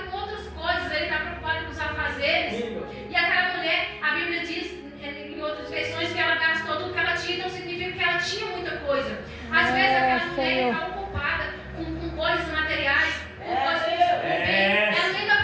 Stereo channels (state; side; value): identical; both; correlation 1.00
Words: com outras coisas, ele está preocupado com os afazeres. E aquela mulher, a Bíblia diz em outras versões que ela gastou tudo que ela tinha, então significa que ela tinha muita coisa. Às vezes aquela mulher Senhor. está ocupada com coisas materiais, com coisas que ela nem está